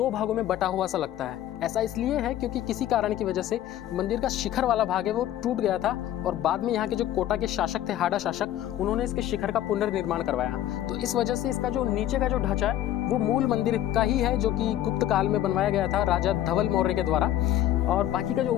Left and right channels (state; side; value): quieter; right; 12.5 dB